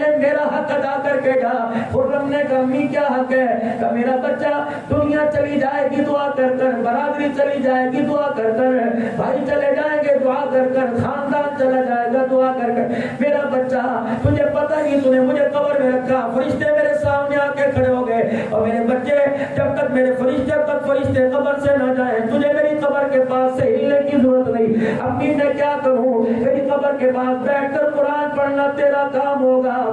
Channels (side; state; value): both; identical; correlation 1.00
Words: میرا حق ادا کر کے جا۔ خرم نے کہا امی کیا حق ہے؟ کہ میرا بچہ دنیا چلی جائے گی دعا کر کر، برادری چلی جائے گی دعا کر کر، بھائی چلے جائیں گے دعا کر کر، خاندان چلا جائے گا دعا کر کر، میرا بچہ تجھے پتہ ہی تو نے مجھے قبر میں رکھا، فرشتے میرے سامنے آ کے کھڑے ہو گئے، اور میرے بچے جب تک میرے فرشتے قبر سے نہ جائیں تجھے میری قبر کے پاس سے ہلنے کی ضرورت نہیں۔ امی میں کیا کروں؟ میری قبر کے پاس بیٹھ کر قرآن پڑھنا تیرا کام ہوگا،